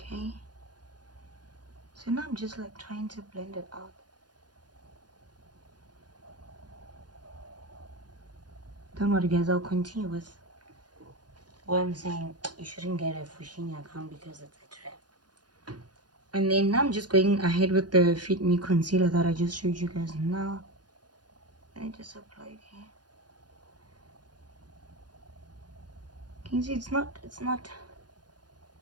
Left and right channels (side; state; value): left; late; 0.69 ms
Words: So now I'm just like trying to blend it out. Don't worry guys, I'll continue with what I'm saying. You shouldn't get a Fushini account because it's a trap. And then now I'm just going ahead with the Fit Me concealer that I just showed you guys now. I just apply it here. Can you see it's not